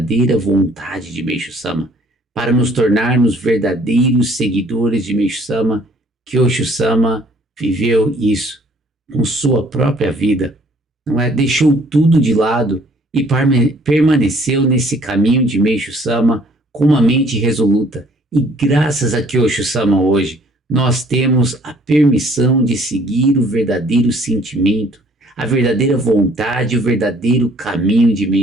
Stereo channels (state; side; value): normal; both; correlation 0.59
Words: vontade de Meishu Sama, para nos tornarmos verdadeiros seguidores de Meishu Sama. Kyosho Sama viveu isso com sua própria vida, não é? Deixou tudo de lado e permaneceu nesse caminho de Meishu Sama com uma mente resoluta. E graças a Kyosho Sama hoje, nós temos a permissão de seguir o verdadeiro sentimento, a verdadeira vontade e o verdadeiro caminho de